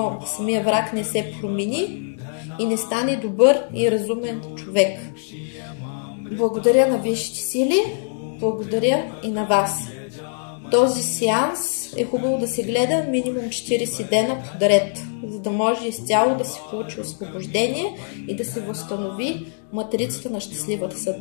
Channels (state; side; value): silent; right; digital silence